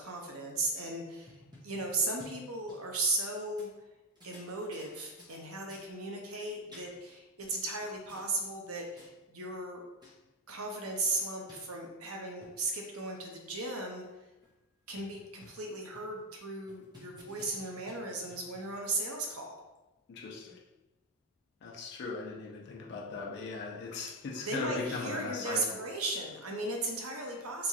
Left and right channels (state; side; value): normal; both; correlation 0.06